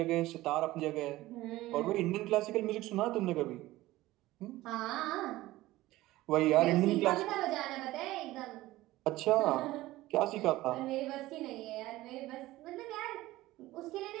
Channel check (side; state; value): left; quieter; 17.2 dB